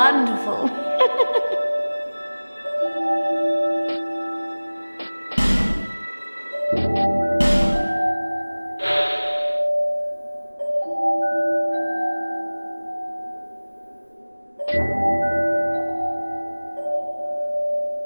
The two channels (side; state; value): both; inverted; correlation -1.00